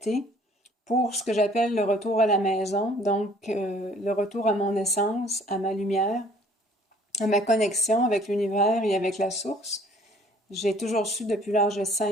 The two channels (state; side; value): normal; both; correlation 0.56